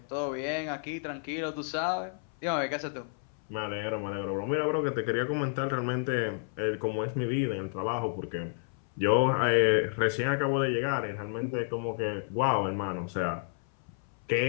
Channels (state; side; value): silent; right; 57 dB below the other